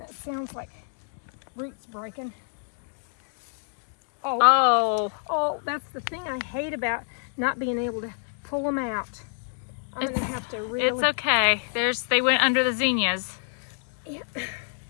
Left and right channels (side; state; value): right; silent; digital silence